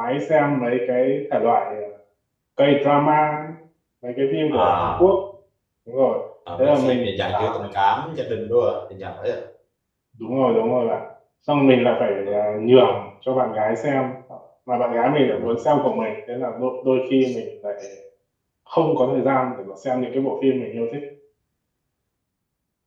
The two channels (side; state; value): both; identical; correlation 1.00